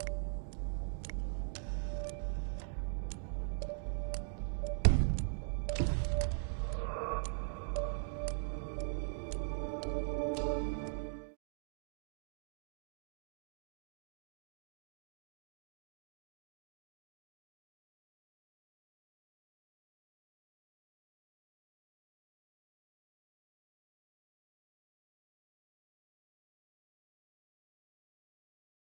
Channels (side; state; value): left; silent; digital silence